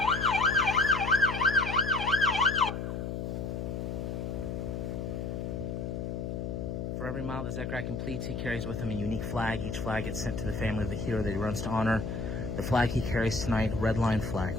For every mile that Zachariah completes, he carries with him a unique flag. Each flag gets sent to the family of the hero that he runs to honor. The flag he carries tonight, a red line flag,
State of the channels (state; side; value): noise; left; hum, 4 dB below the sound